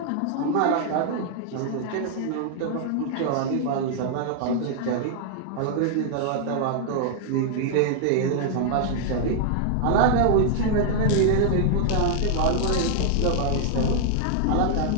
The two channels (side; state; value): both; different; correlation -0.01